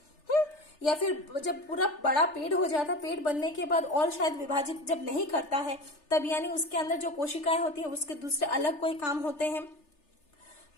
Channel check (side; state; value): right; late; 3.3 ms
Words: या फिर जब पूरा बड़ा पेड़ हो जाता, पेड़ बनने के बाद और शायद विभाजित जब नहीं करता है तब यानी उसके अंदर जो कोशिकाएं होती है उसके दूसरे अलग कोई काम होते हैं।